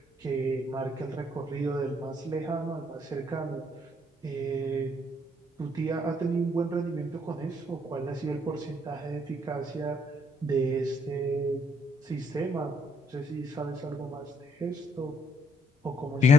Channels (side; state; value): both; normal; correlation 0.68